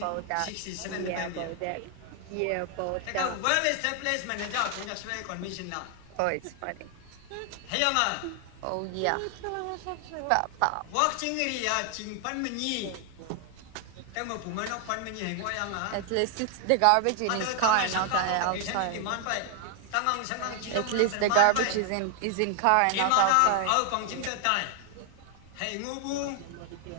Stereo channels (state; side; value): different; both; correlation 0.00